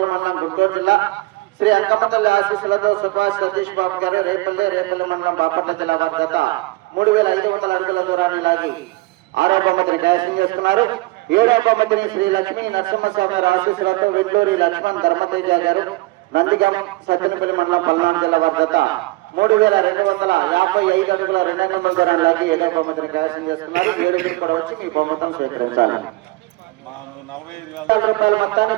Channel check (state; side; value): quieter; left; 21.4 dB